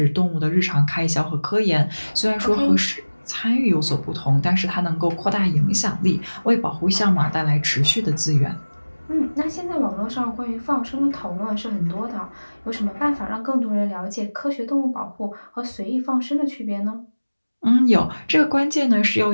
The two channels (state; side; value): inverted; both; correlation -1.00